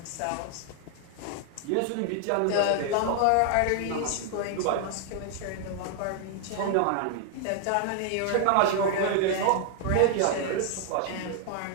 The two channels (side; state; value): both; different; correlation 0.00